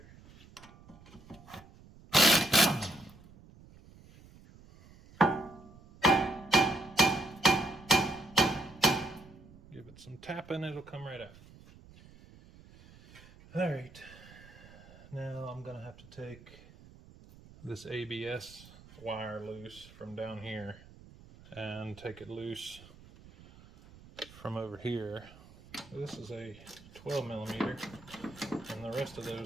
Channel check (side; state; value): right; noise; rumble, 21 dB below the sound